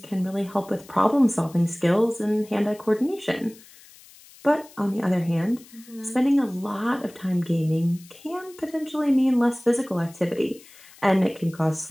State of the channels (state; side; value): noise; left; hiss, 23 dB below the sound